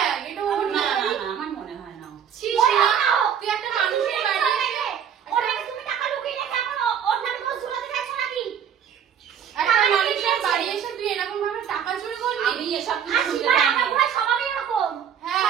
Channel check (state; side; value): quieter; left; 8.4 dB